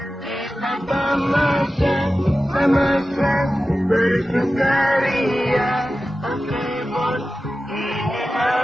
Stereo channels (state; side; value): normal; both; correlation 0.94